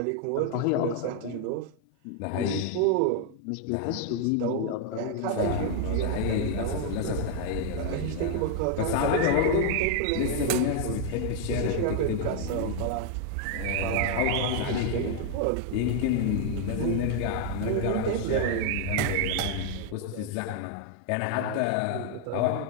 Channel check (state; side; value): different; both; correlation 0.00